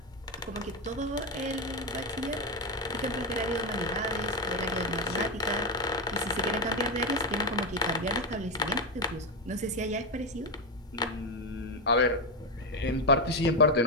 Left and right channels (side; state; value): both; normal; correlation 0.10